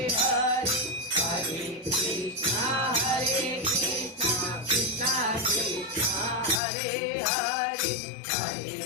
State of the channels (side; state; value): right; drops out; at 6.6 s